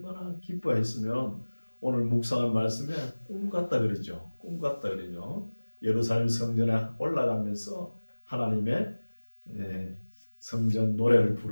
기뻐했으면 오늘 묵상한 말씀에 꿈 같다 그러죠. 꿈 같다 그러죠. 예루살렘 성전에 올라가면서 하나님의 성전 노래를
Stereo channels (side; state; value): both; inverted; correlation -1.00